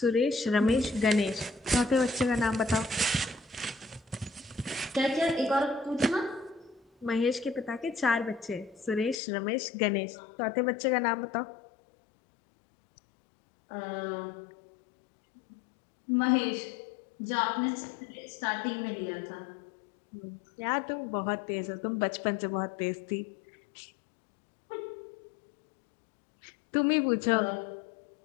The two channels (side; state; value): right; drops out; at 9.2 s